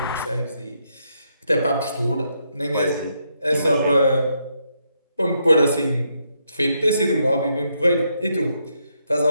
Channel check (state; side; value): inverted; both; correlation -0.78